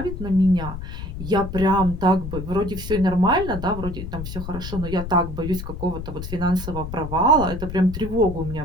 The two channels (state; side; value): noise; left; rumble, 8 dB below the sound